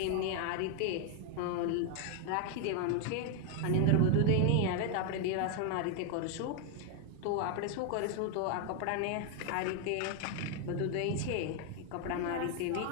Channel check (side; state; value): both; different; correlation 0.00